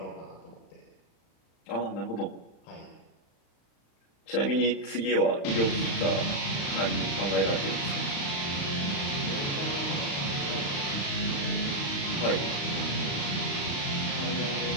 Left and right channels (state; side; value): late; right; 35 ms